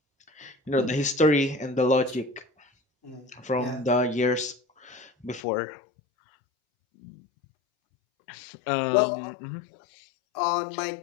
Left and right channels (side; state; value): right; drops out; at 5.4 s